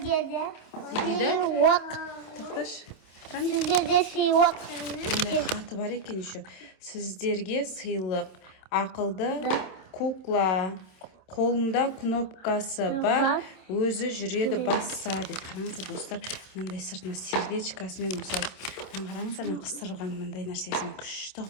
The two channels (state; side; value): late; right; 27 ms